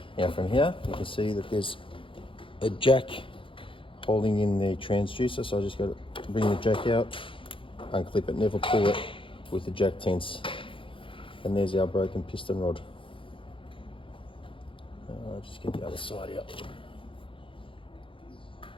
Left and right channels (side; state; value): right; late; 0.25 ms